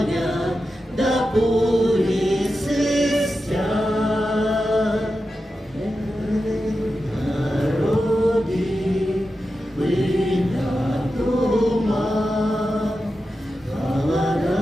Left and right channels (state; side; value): normal; both; correlation 0.91